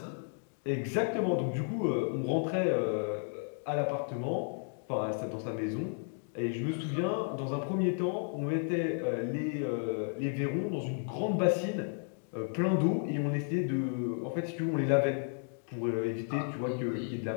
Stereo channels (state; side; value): silent; right; 56 dB below the other